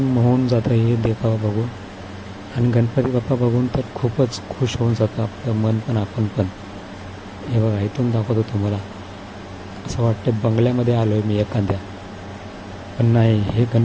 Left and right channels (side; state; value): both; identical; correlation 1.00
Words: मोहून जातं हे देखावा बघून. आणि गणपती बाप्पा बघून तर खूपच खुश होऊन जातं आपलं मन पण आपण पण. हे बघा इथून दाखवतो तुम्हाला. असं वाटतं बंगल्यामध्ये आलो आहे मी एखाद्या. पण नाही, हे